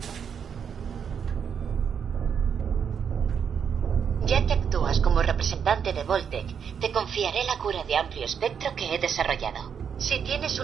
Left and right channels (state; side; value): quieter; left; 7.3 dB